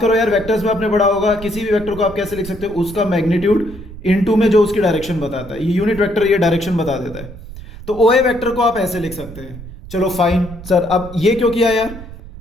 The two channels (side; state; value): right; noise; rumble, 14 dB below the sound